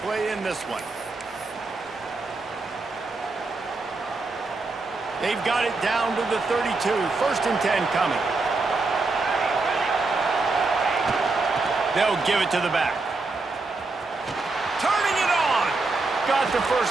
play in this one. They've got it down to the 32. 1st and 10 coming. They'll give it to the back. Turning it on. Got the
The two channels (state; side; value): quieter; left; 3.6 dB